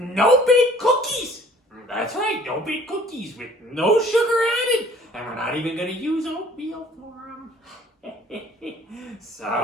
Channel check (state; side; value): normal; both; correlation 0.54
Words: no-bake cookies! That's right, no-bake cookies with no sugar added. And we're not even gonna use oatmeal for them.